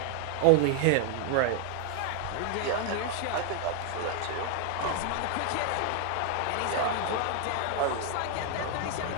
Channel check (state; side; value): different; both; correlation 0.00